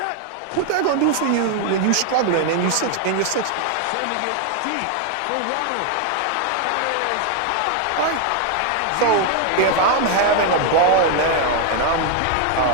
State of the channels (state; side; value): different; both; correlation 0.01